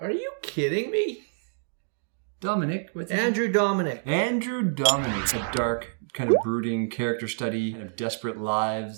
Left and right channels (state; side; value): silent; left; digital silence